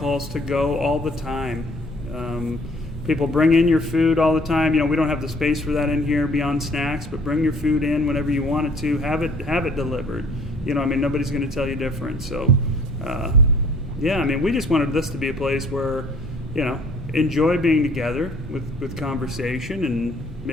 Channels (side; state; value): both; normal; correlation 0.56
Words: to go all the time. People bring in your food all the time. We don't have the space for that in here beyond snacks, but bring your food in whenever you want it to. Have it delivered. Nobody's going to tell you different. So, we just wanted this to be a place where, enjoy being together with conversation and